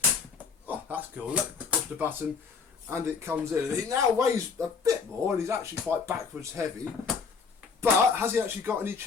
Oh, that's cool. Look, push the button and it comes in. He now weighs a bit more and he's actually quite backwards heavy. But has he actually got any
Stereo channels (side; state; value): right; quieter; 5.5 dB